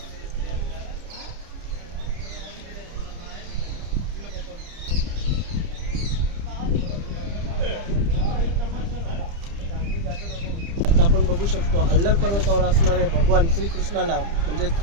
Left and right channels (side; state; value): left; late; 30 ms